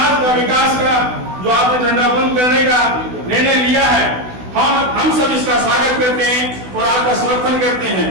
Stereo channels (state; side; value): late; left; 16 ms